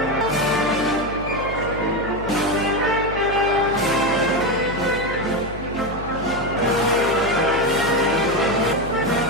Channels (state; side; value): noise; left; hum, 12 dB below the sound